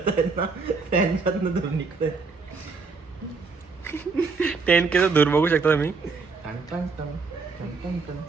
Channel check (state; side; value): quieter; left; 4.6 dB